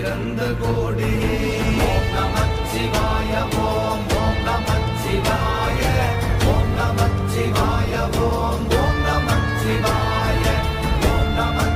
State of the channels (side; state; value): both; identical; correlation 1.00